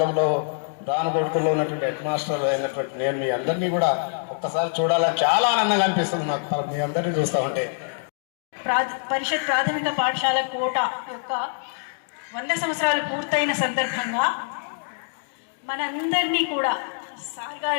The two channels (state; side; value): silent; right; digital silence